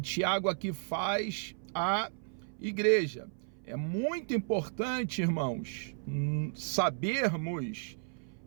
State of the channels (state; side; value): silent; left; 55 dB below the other